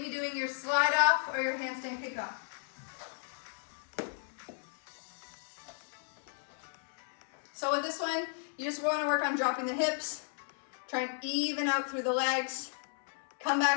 doing your slide off or your handstand kick off. So with this one, you just want to work on dropping the hips, try and even out through the legs, come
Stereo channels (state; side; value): silent; right; 55 dB below the other